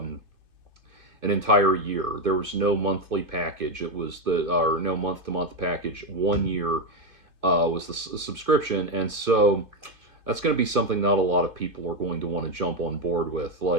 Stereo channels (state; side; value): late; left; 2.5 ms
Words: year. There was no monthly package. It was or no month to month package. 1 year was the subscription, and so that's going to be something not a lot of people are going to want to jump on board with.